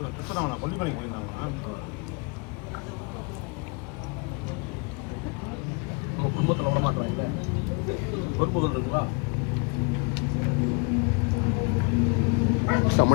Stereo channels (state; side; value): quieter; right; 32.3 dB